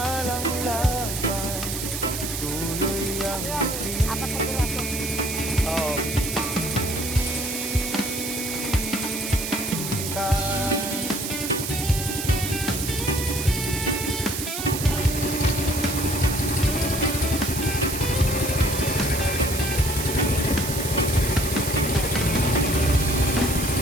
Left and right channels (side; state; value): right; noise; hiss, 5 dB below the sound